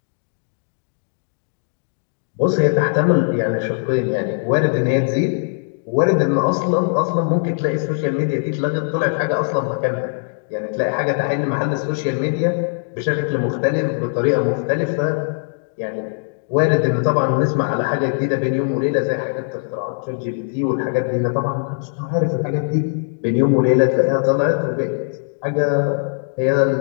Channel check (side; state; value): right; silent; digital silence